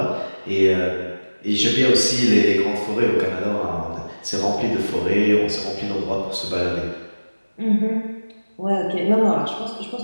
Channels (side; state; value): both; inverted; correlation -1.00